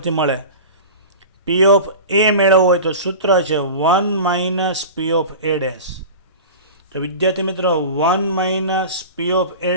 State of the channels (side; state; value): both; inverted; correlation -0.33